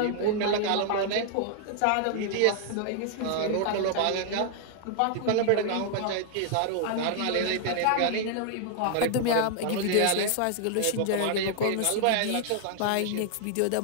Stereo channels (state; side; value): different; both; correlation 0.00